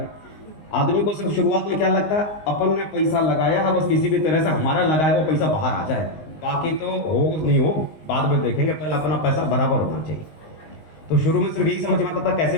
आदमी को सिर्फ शुरुआत में क्या लगता है, अपन ने पैसा लगाया है, बस किसी भी तरह से हमारा लगाया वो पैसा बाहर आ जाए, बाकी तो हो नहीं हो बाद में देखेंगे, पहले अपना पैसा बराबर होना चाहिए। तो शुरू में सिर्फ यही समझ में आता था कैसे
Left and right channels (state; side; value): late; right; 19 ms